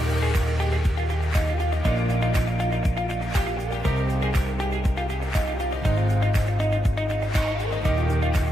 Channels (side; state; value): both; normal; correlation 0.84